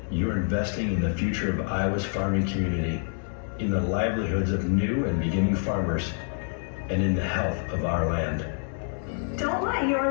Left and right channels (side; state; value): right; silent; 60 dB below the other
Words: you're investing in the future of Iowa's farming community, in the livelihoods of new and beginning farmers, and in the health of our land. Don't let